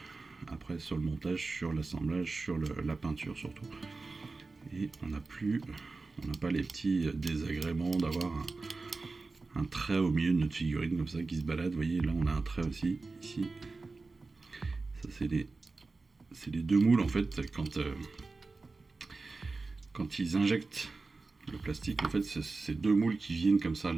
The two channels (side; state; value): left; quieter; 3.8 dB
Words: Après sur le montage, sur l'assemblage, sur la peinture surtout. Et on n'a pas les petits désagréments d'avoir un trait au milieu de notre figurine comme ça qui se balade. Vous voyez, là on a un trait aussi, ici. Ça c'est les deux moules en fait, quand ils injectent le plastique, en fait c'est deux moules qui viennent comme ça